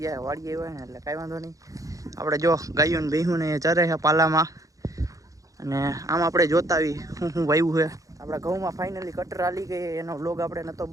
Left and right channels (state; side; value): late; left; 0.16 ms